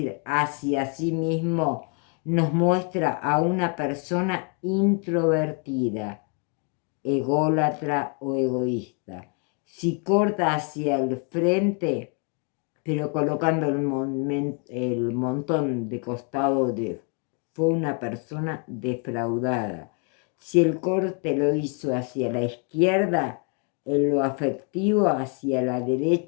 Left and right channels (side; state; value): right; quieter; 38.3 dB